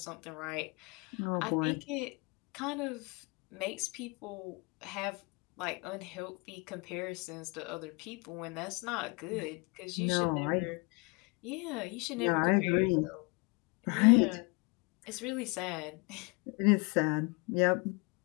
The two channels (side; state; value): right; quieter; 30.2 dB